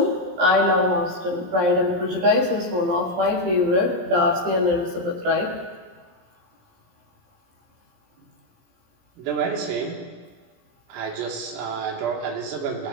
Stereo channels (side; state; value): left; late; 17 ms